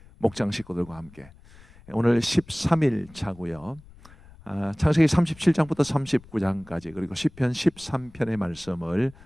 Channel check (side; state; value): left; noise; rumble, 23 dB below the sound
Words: 목장 식구들과 함께 오늘 13일 차고요. 창세기 37장부터 39장까지 그리고 시편 13편의 말씀을